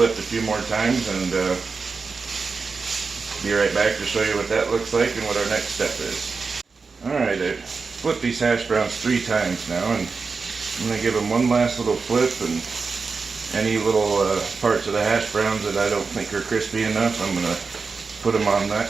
a few more times and be right back to show you what that looks like and what our next step is. Alright, I've flipped these hash browns 3 times now, and I'm going to give them one last little flip, and any little parts of the hash browns that I don't think are crispy enough, I'm going to put them on that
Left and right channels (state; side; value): quieter; left; 4.7 dB